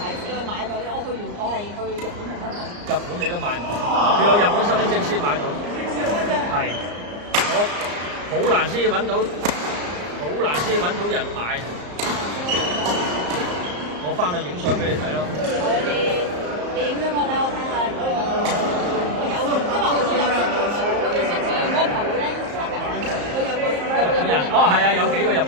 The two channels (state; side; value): late; left; 34 ms